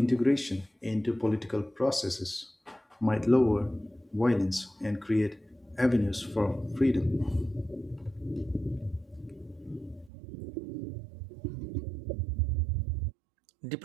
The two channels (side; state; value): left; drops out; at 10.1 s